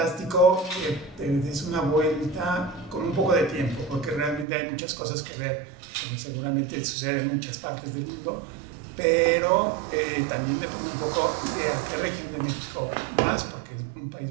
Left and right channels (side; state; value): left; drops out; at 4.5 s